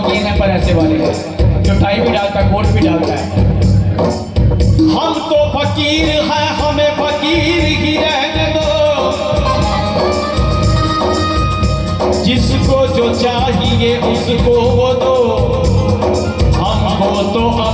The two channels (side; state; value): both; identical; correlation 1.00